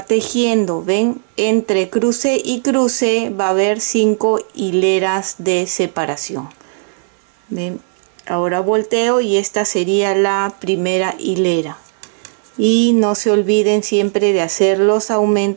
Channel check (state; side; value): silent; left; digital silence